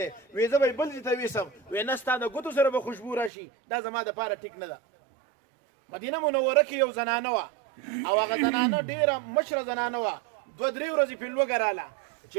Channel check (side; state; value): left; drops out; at 3.3 s